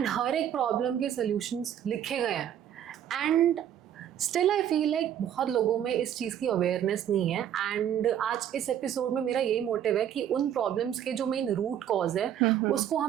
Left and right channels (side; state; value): left; quieter; 10.1 dB